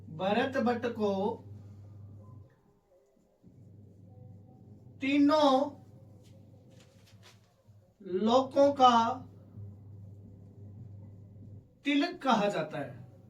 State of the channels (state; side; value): identical; both; correlation 1.00